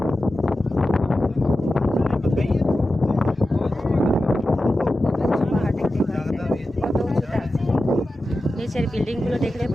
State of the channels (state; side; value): normal; both; correlation 0.93